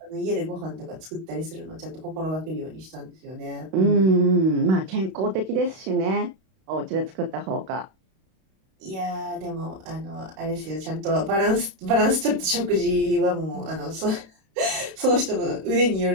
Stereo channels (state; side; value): late; left; 32 ms